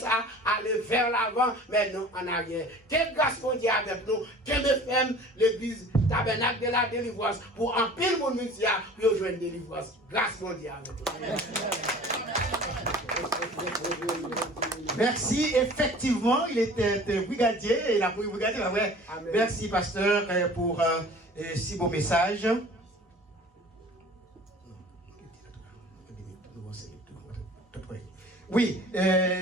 aille vers l'avant, mais non en arrière. Quelle grâce pour Dieu avec nous, quelle FM l'église tabernacle de la délivrance pour en pile mon ministère pour rejoindre la délivrance. Grâce mondiale. Merci. Effectivement, il était brigadier. Il a pris brigadier. Ouais. Merci, pasteur, pour si beau message. Oui,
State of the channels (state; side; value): normal; both; correlation 0.45